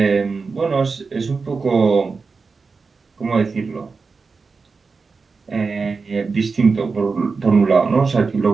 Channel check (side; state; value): left; quieter; 4.6 dB